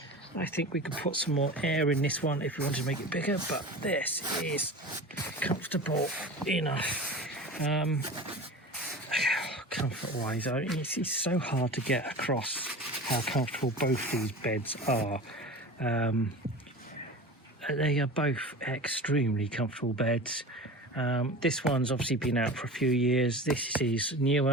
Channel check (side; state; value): both; normal; correlation 0.33